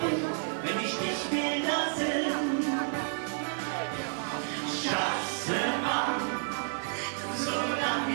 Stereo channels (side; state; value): left; silent; 57 dB below the other